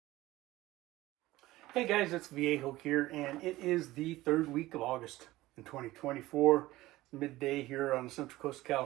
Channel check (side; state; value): left; quieter; 17.6 dB